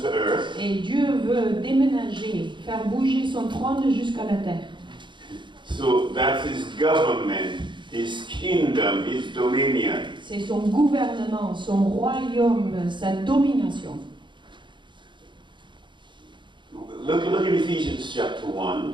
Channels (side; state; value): left; late; 0.23 ms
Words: earth. Et Dieu veut déménager, faire bouger son trône jusqu'à la terre. So that's his government, his kingdom, his dominion. C'est son gouvernement, son royaume, sa domination. Look in Ephesians chapter